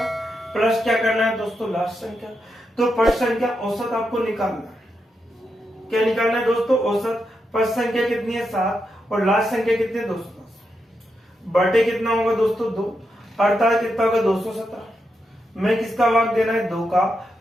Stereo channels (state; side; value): normal; both; correlation 0.85